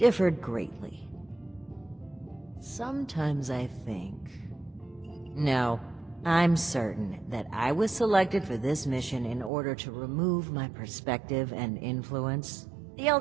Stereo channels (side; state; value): left; drops out; at 9.5 s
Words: greatly. Sometimes I think... No, I'm certain that I was selected for this mission in order to remove my perspective and influence. The